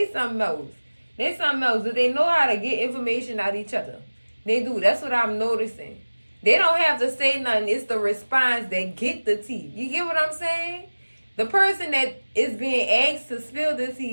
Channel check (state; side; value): inverted; both; correlation -1.00